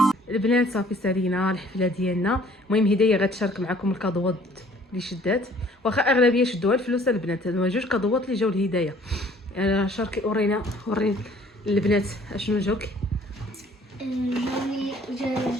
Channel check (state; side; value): normal; both; correlation 0.56